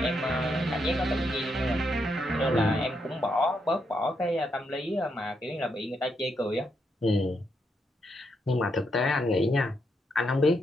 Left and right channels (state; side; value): normal; both; correlation 0.80